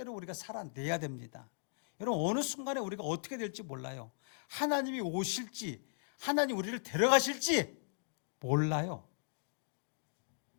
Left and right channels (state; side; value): silent; right; digital silence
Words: 우리가 살아내야 됩니다. 여러분, 어느 순간에 우리가 어떻게 될지 몰라요. 하나님이 오실지, 하나님 우리를 데려가실지 몰라요.